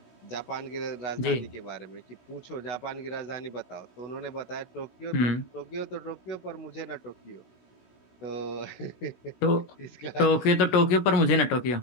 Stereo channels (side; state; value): right; late; 16 ms